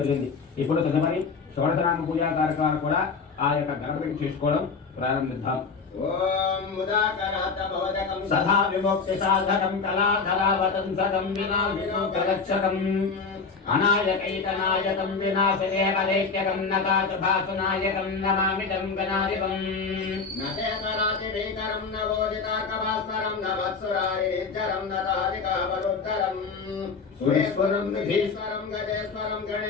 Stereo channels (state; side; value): quieter; right; 4.9 dB